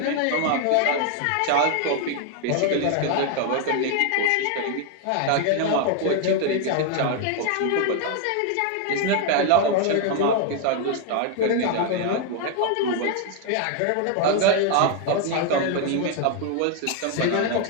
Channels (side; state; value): both; different; correlation 0.01